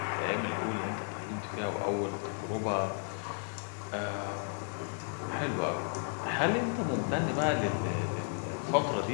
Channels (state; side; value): silent; right; 55 dB below the other